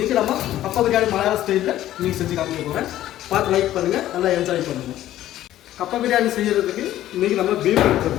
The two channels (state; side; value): quieter; right; 13.4 dB